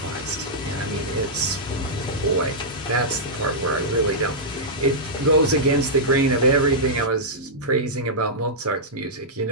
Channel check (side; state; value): both; normal; correlation -0.11